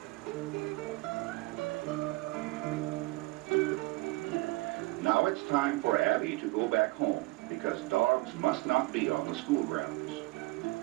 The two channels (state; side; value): quieter; left; 22.2 dB